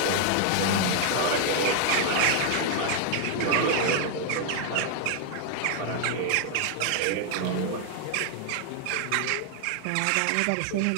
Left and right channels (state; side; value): different; both; correlation 0.00